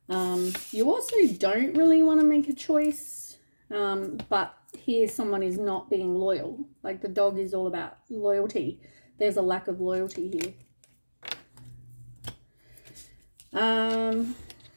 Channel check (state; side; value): inverted; both; correlation -1.00